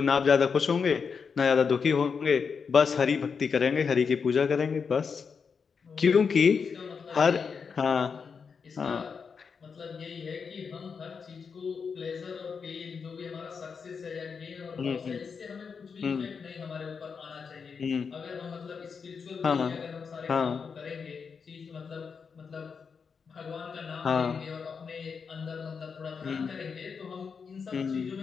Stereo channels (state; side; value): quieter; right; 5.8 dB